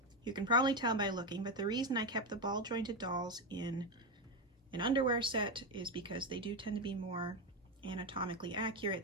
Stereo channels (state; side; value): normal; both; correlation 0.10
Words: you can probably tell by looking, but the reason I kept the ball jointed dolls in an underwear set is because they do tend to be more anatomically accurate